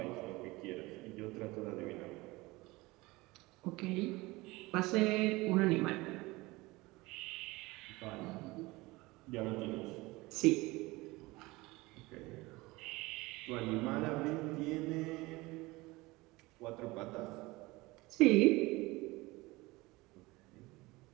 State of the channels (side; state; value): left; quieter; 21.6 dB